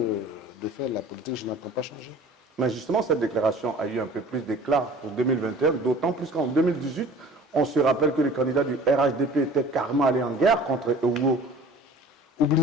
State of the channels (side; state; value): both; normal; correlation 0.46